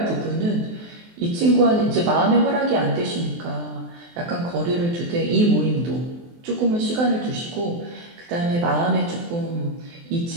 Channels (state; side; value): late; left; 23 ms